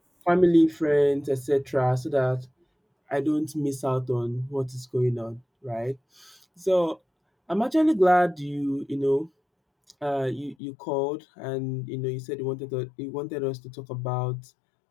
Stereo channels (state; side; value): drops out; right; at 10.6 s